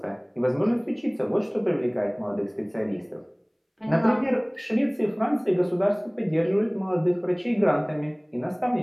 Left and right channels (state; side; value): identical; both; correlation 1.00